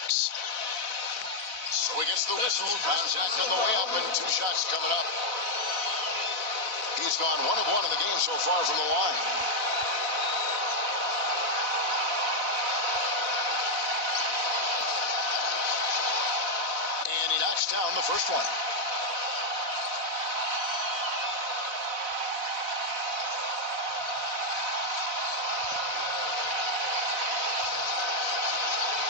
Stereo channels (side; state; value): left; late; 4.0 ms